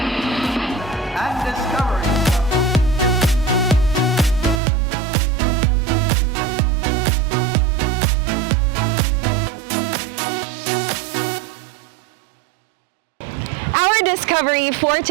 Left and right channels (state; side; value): drops out; left; at 4.6 s